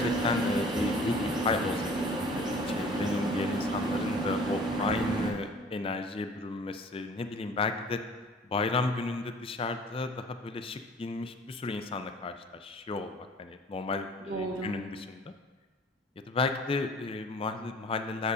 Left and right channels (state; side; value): normal; both; correlation 0.49